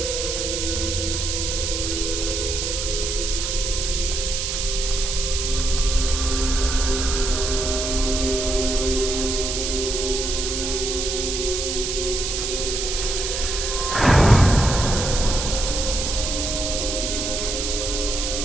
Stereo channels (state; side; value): noise; right; hiss, 2 dB below the sound